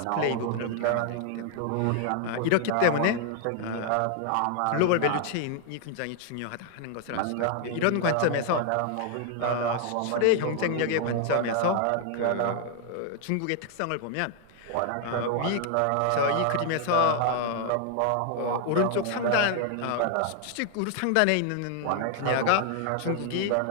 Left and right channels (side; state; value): both; different; correlation 0.00